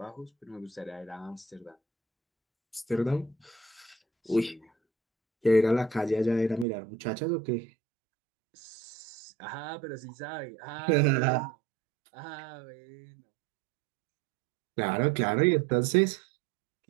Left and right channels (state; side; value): drops out; left; at 6.7 s